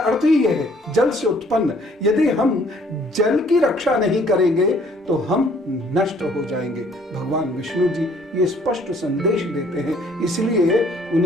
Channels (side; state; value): both; normal; correlation 0.60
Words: ही यह है जल से उत्पन्न, यदि हम जल की रक्षा नहीं करेंगे तो हम नष्ट हो जाएंगे। भगवान विष्णु जी ये स्पष्ट संदेश देते हैं, इसलिए